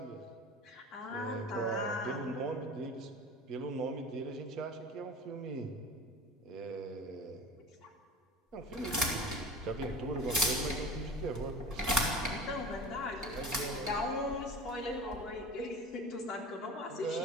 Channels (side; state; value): both; normal; correlation 0.36